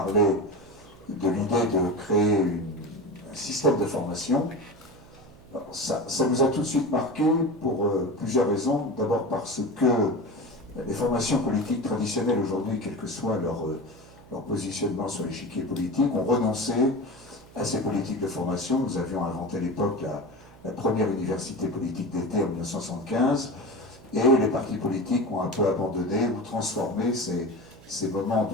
de l'idée de créer un système de formation. Alors, ça nous a tout de suite marqué pour plusieurs raisons. D'abord parce que les formations politiques traditionnelles aujourd'hui, quel que soit leur positionnement sur l'échiquier politique, ont renoncé à ces politiques de formation. Nous avions inventé à l'époque la première université politique d'été en 1975, et les partis politiques ont un peu abandonné ou transformé ces moments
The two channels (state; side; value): noise; right; hum, 22 dB below the sound